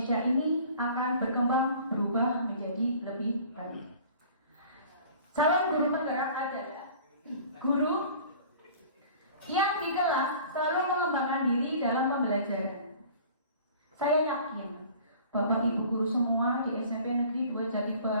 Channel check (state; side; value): inverted; both; correlation -0.47